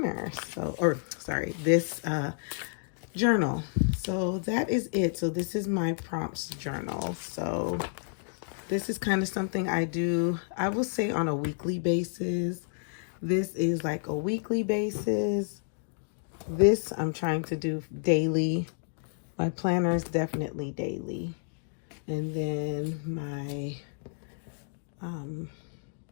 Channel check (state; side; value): silent; right; digital silence